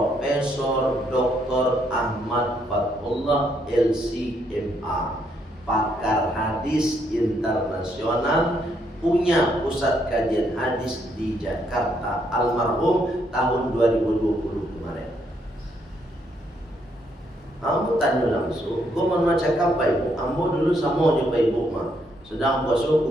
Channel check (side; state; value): both; normal; correlation 0.73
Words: Dr. Ahmad Fathullah LCMA, pakar hadis internasional, punya pusat kajian hadis di Jakarta, almarhum tahun 2020 kemarin. Kamu tanya langsung, gue mau cakap Pak Ibu, ambo dulu sama aja Pak Ibu mah, sedang puasa